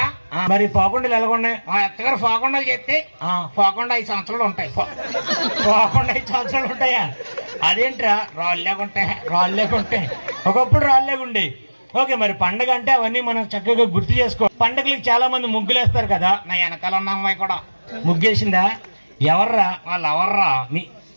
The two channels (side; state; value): both; inverted; correlation -1.00